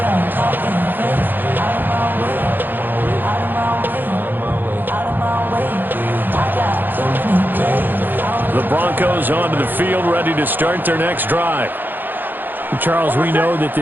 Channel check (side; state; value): left; late; 0.090 ms